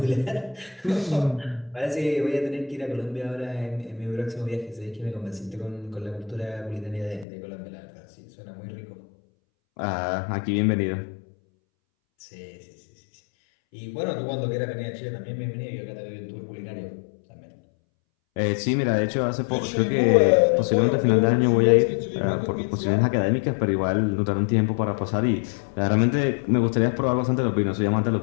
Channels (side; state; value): right; drops out; at 7.2 s